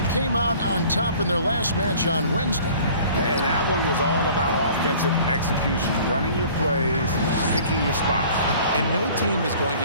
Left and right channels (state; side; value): inverted; both; correlation -0.49